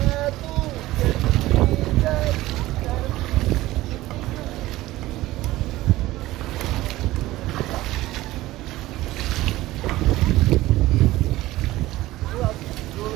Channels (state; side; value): quieter; left; 17.1 dB